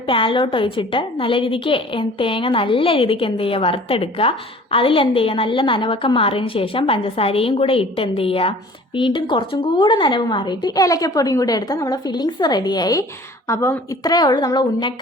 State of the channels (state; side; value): normal; both; correlation 0.48